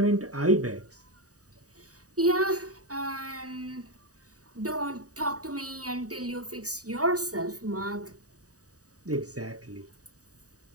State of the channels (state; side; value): late; left; 0.66 ms